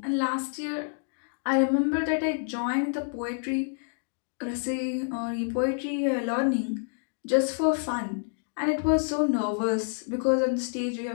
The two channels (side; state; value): right; silent; digital silence